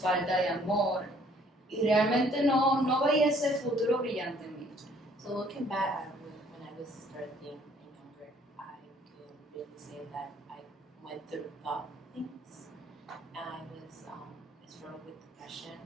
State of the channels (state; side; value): normal; both; correlation 0.60